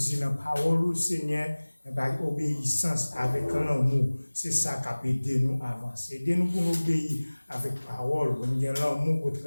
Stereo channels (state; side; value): inverted; both; correlation -1.00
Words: la parole, Seigneur, par obéissance avec l'amour. C'est ça qui a aidé nous à avancer. Aidez-nous pour nous obéir avec parole, comme bien l'amour au